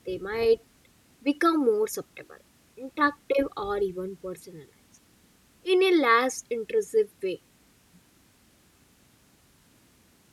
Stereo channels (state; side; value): identical; both; correlation 1.00